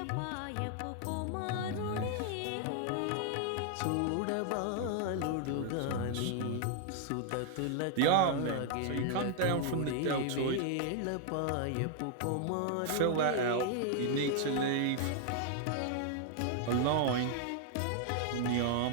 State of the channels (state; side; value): different; both; correlation 0.00